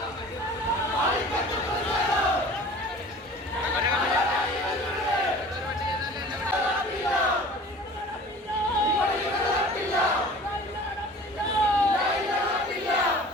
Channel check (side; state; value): both; normal; correlation 0.44